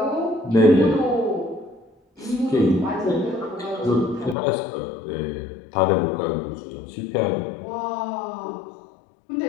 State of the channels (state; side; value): drops out; right; at 4.4 s